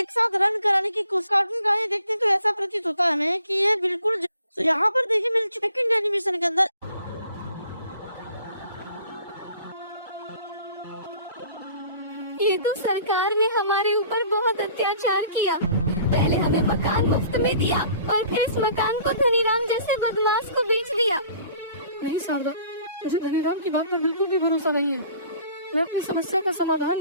साथ रन कराने की कोशिश। कार्टून गाने देखते हैं तो ऐसा प्रतीत होता है हमें कि ये बिल्कुल तो यहाँ पर देखिए मिल चुका सेकंड एनिमेशन के अंदर। ये तो सरकार ने हमारे ऊपर बहुत अत्याचार किया। पहले हमें मकान मुफ्त में दिया और फिर इस मकान को धनीराम जैसे बदमाश को बेच दिया। नहीं शारदा, मुझे धनीराम की बात पर बिल्कुल भी भरोसा नहीं है। मैं अपनी समस्या का समाधान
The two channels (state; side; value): inverted; both; correlation -0.53